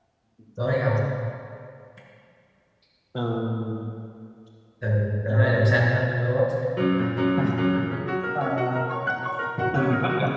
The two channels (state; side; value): identical; both; correlation 1.00